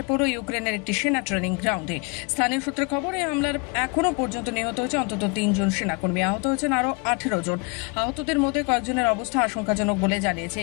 পড়ল ইউক্রেনের একটি সেনা ট্রেনিং গ্রাউন্ডে। স্থানীয় সূত্রে খবর, এই হামলার এখনো পর্যন্ত নিহত হয়েছে অন্তত 3 জন সেনাকর্মী, আহত হয়েছেন আরও 18 জন। আহতদের মধ্যে কয়েকজনের অবস্থা আশঙ্কাজনক বলে জানিয়েছে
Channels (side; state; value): right; quieter; 30.8 dB